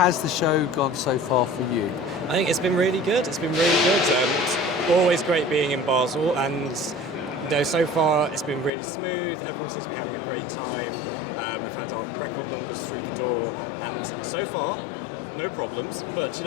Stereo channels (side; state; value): right; drops out; at 8.7 s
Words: the show gone so far for you? I think it's been really good. It's always great being in Basel, and so far it's been really smooth. Everyone seems to be having a great time. We've had our record numbers through the door, and so far, no problems. But